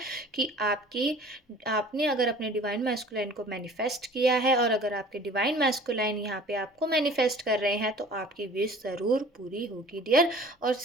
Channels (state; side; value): normal; both; correlation 0.46